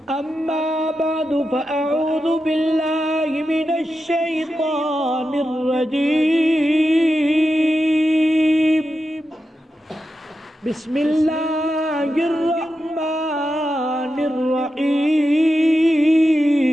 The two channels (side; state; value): both; normal; correlation 0.89